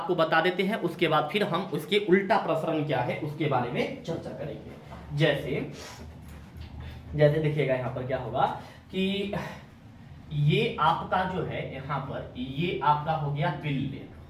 बता देते हैं। उसके बाद फिर हम उसके उल्टा प्रसरण क्या है उसके बारे में चर्चा करेंगे। जैसे जैसे देखिएगा यहाँ पर क्या होगा कि ये आपका जो है यहाँ पर ये आपका हो गया विलयन,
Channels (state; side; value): identical; both; correlation 1.00